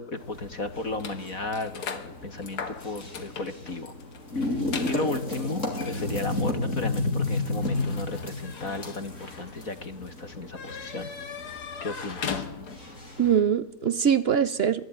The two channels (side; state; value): right; late; 3.7 ms